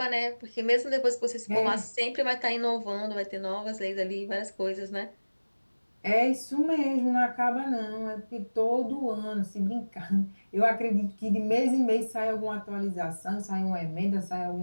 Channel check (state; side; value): inverted; both; correlation -1.00